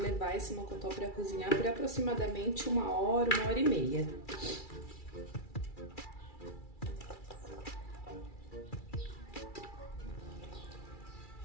esse mocotó para cozinhar por aproximadamente 1 hora e meia.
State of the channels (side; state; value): right; late; 2.3 ms